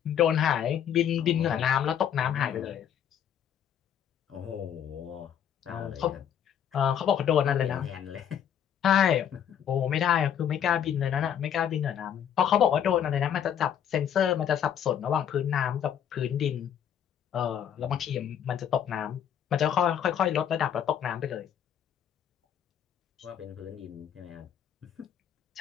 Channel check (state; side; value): quieter; right; 9.2 dB